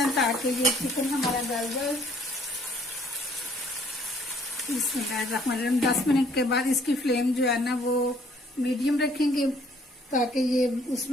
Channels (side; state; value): both; normal; correlation 0.61